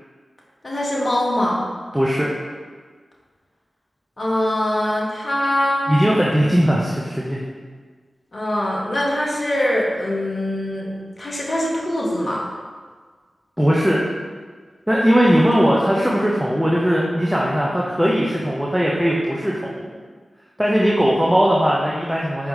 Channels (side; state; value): both; normal; correlation 0.96